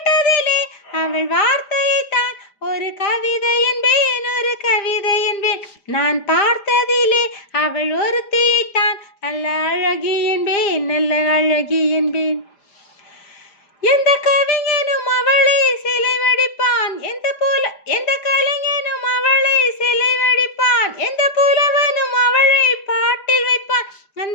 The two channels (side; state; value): right; late; 5.0 ms